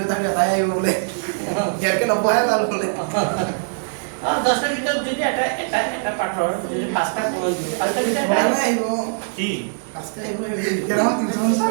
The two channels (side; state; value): left; silent; digital silence